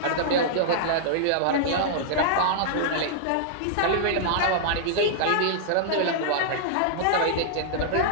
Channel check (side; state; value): both; different; correlation -0.01